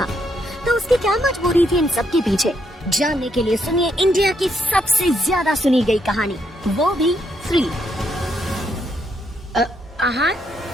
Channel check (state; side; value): normal; both; correlation 0.76